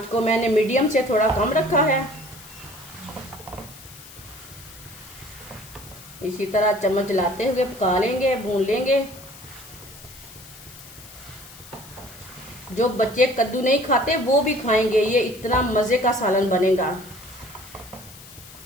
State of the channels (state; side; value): noise; left; hiss, 18 dB below the sound